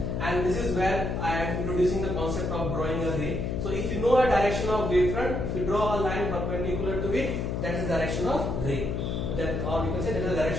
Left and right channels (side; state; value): left; noise; hum, 2 dB below the sound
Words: And this is where I am introducing the concept of drawing a ray. So if you know a direction of wavefront, if you draw a line perpendicular to it, that is the direction of ray. That, or we can say that is the